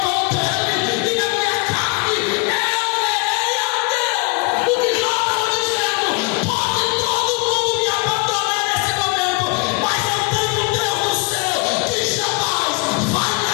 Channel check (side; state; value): right; quieter; 29.4 dB